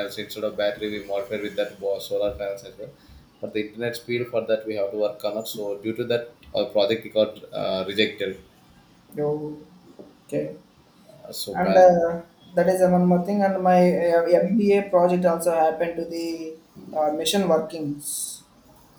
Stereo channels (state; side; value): identical; both; correlation 1.00